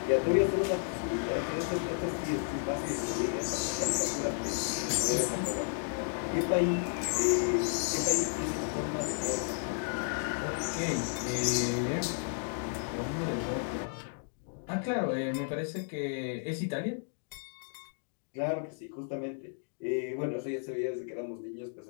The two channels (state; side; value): silent; right; digital silence